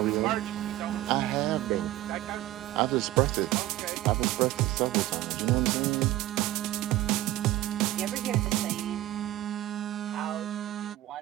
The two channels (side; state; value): left; quieter; 15.4 dB